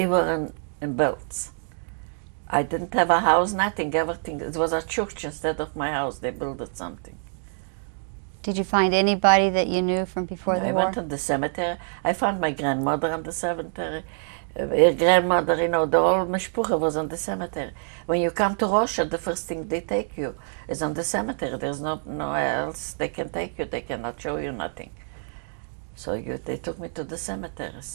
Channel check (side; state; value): left; silent; 59 dB below the other